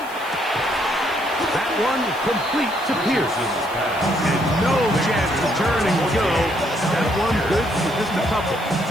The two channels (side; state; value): right; noise; hiss, 20 dB below the sound